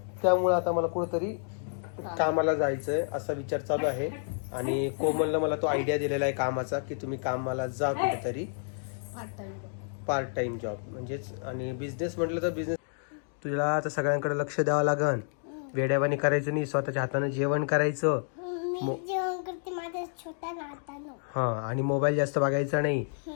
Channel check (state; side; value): silent; right; digital silence